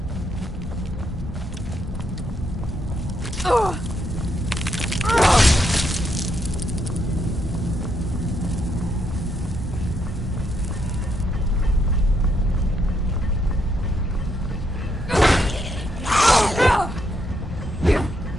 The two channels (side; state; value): both; normal; correlation 0.77